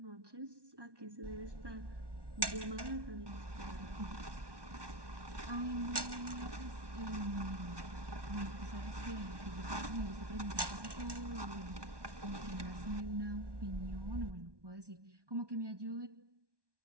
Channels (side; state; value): left; late; 1.2 ms